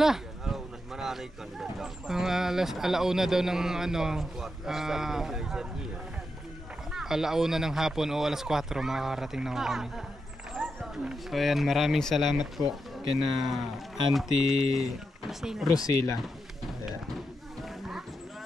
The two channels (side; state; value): both; normal; correlation 0.86